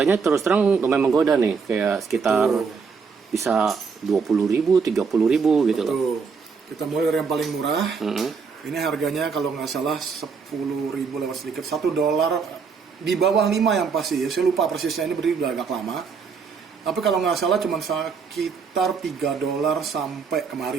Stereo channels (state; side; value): quieter; left; 5.5 dB